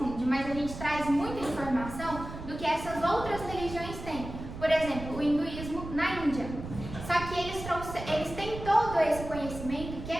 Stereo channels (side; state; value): right; noise; rumble, 10 dB below the sound